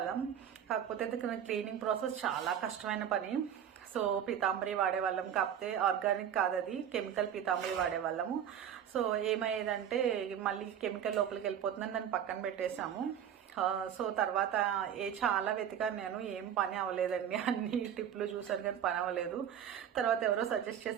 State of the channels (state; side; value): quieter; left; 9.2 dB